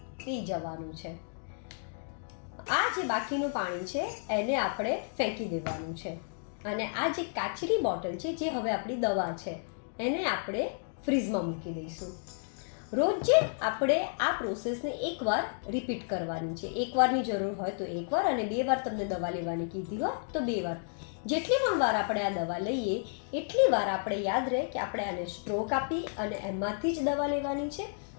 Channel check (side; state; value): right; silent; digital silence